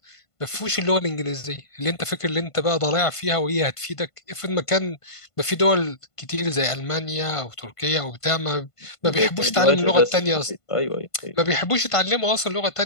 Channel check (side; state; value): right; late; 1.5 ms